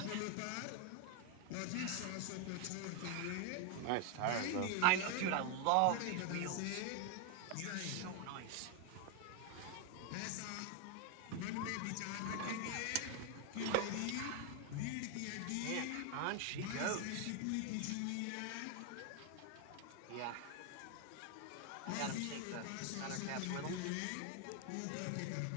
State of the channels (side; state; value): both; different; correlation 0.01